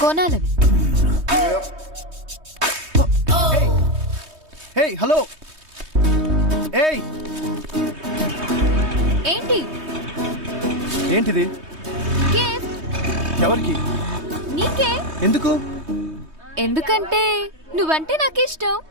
కొనాలని. Hey hello. ఏయ్ ఏంటి? ఏంటిది? గిఫ్ట్. ఎవరికి? నీకే. ఎందుకు? ఎందుకంటే నువ్వంటే నాకు ఇష్టం.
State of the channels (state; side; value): late; left; 3.2 ms